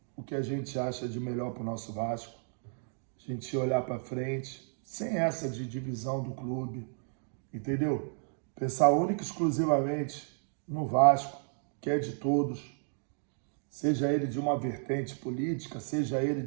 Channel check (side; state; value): left; silent; 56 dB below the other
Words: o que a gente acha de melhor para o nosso Vasco. A gente olhar para frente, sem essa de divisão do clube, entendeu? Pensar única e exclusivamente no Vasco, que é de todos, seja ele de uma vertente política, seja ele